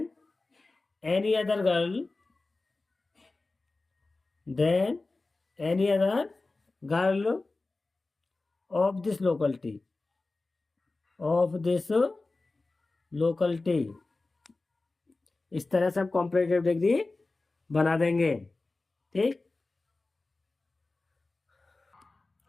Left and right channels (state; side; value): quieter; right; 3.4 dB